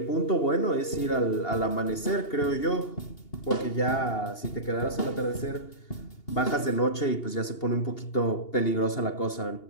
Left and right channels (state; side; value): late; right; 2.8 ms